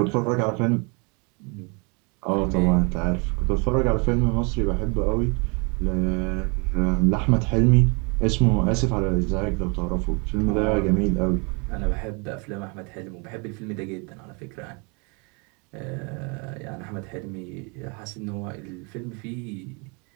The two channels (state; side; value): quieter; left; 32.5 dB